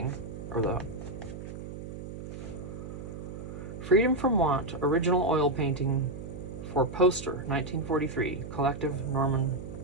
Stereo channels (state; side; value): noise; right; hum, 9 dB below the sound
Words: or the Freedom from Want, original oil painting for poster, 1943, collection Norman